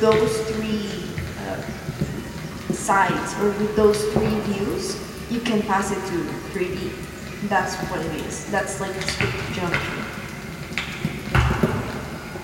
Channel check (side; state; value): both; identical; correlation 1.00